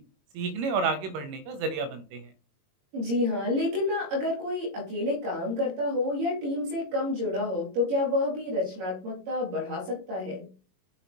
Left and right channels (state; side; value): late; left; 21 ms